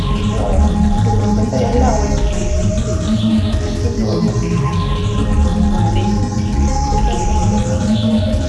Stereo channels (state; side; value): identical; both; correlation 1.00